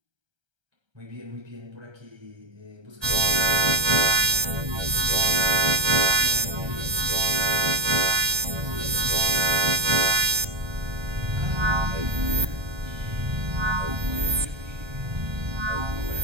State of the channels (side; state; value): left; late; 1.3 ms